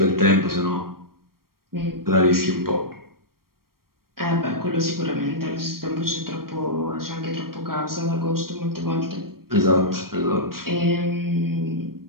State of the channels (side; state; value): left; late; 0.93 ms